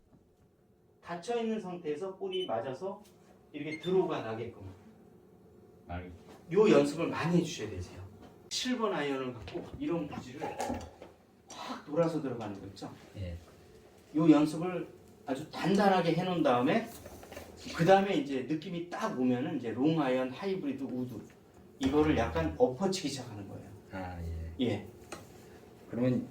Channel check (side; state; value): both; identical; correlation 1.00